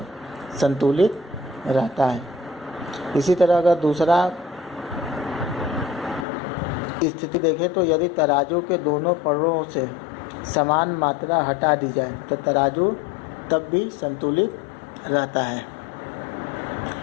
संतुलित रहता है। इसी तरह अगर दूसरा स्थिति देखें तो यदि तराजू के दोनों पलड़ों से समान मात्रा हटा दी जाए तो तराजू तब भी संतुलित रहता है।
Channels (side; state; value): right; drops out; at 6.2 s